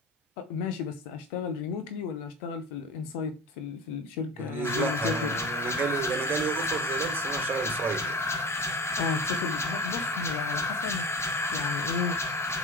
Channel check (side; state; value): both; normal; correlation 0.31